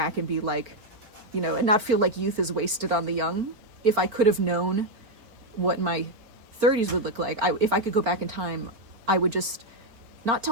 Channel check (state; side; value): late; left; 4.4 ms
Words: and be like, and not feel like youth is wasted on the young. If I could have known what my 30s would look like, if I could go back in time, I would just not